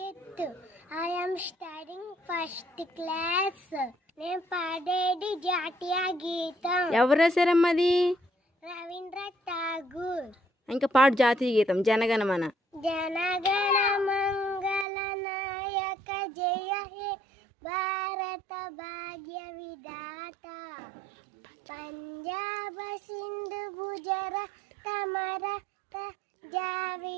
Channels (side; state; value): left; drops out; at 14.9 s